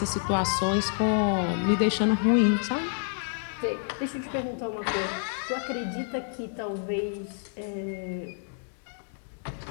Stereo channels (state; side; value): silent; right; digital silence